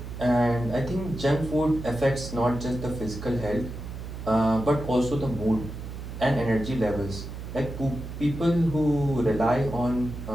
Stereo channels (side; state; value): right; noise; hum, 9 dB below the sound